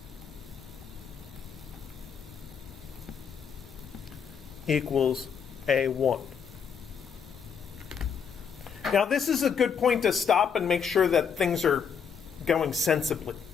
equals A1. Now this is a good point to stop and make sure that things are going sensibly,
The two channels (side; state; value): right; quieter; 6.8 dB